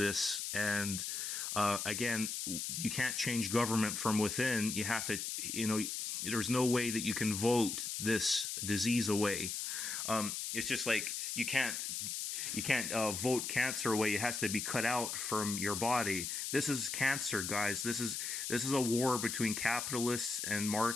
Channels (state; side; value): noise; left; hiss, 3 dB below the sound